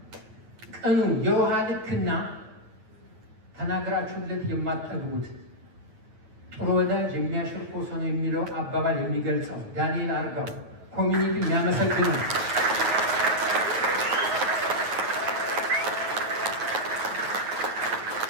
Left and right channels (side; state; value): left; late; 9.2 ms